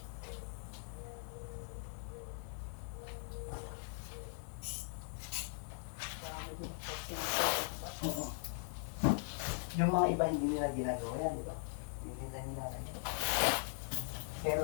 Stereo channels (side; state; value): right; silent; digital silence